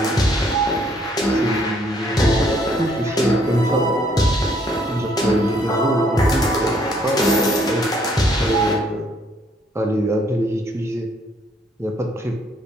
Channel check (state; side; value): normal; both; correlation 0.66